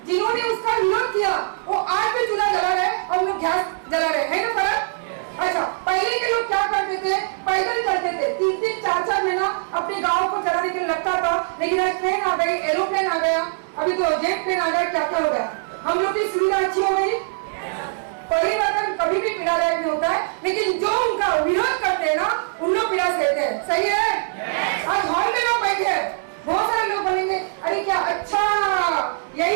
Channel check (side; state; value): left; silent; digital silence